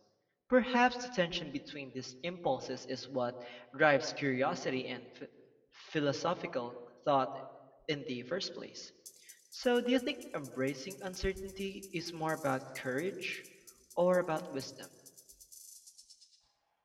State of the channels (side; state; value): both; identical; correlation 1.00